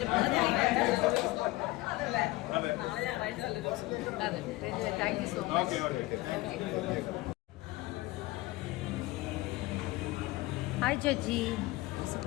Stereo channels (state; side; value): quieter; right; 19.5 dB